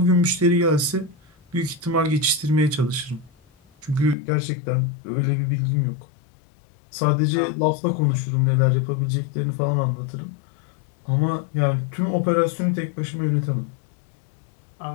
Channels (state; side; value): drops out; right; at 4.2 s